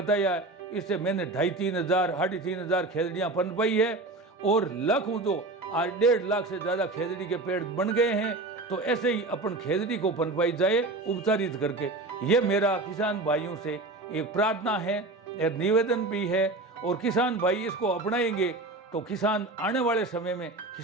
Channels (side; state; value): left; quieter; 3.1 dB